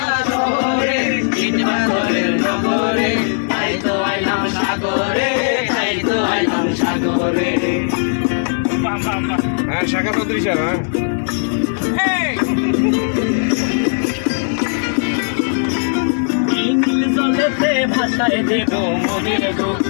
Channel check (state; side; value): silent; right; digital silence